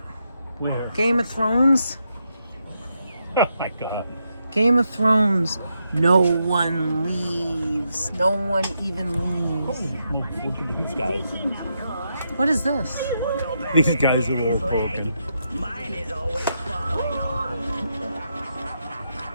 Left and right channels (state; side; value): inverted; both; correlation -0.82